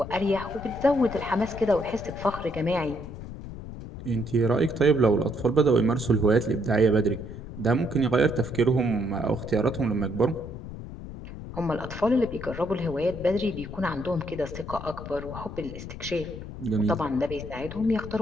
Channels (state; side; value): noise; left; rumble, 11 dB below the sound